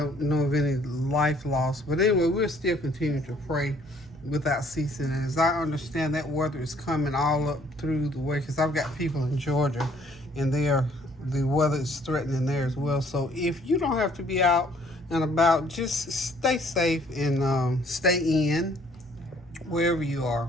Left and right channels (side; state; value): right; noise; hum, 23 dB below the sound